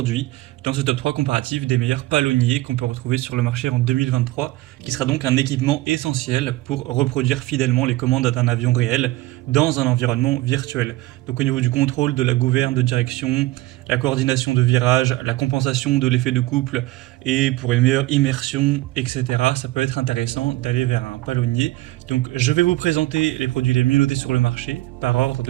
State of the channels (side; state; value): left; quieter; 18.0 dB